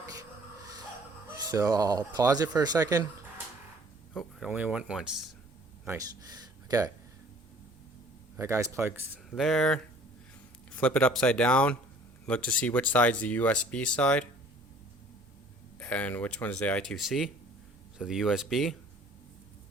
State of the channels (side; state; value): both; normal; correlation 0.54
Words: So I'll pause it for a second. Oh, it only went once. Nice. Okay. That guy's plugged there. Flip it upside down. Look to see which side's the USB side and which one is the I2C. So the USB.